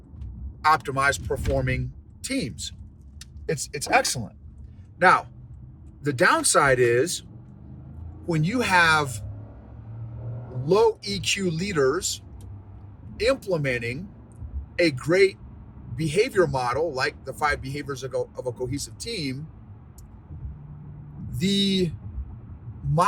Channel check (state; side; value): identical; both; correlation 1.00